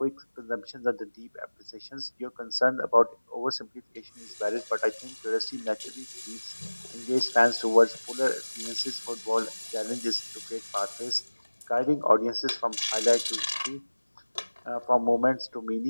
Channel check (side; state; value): both; inverted; correlation -1.00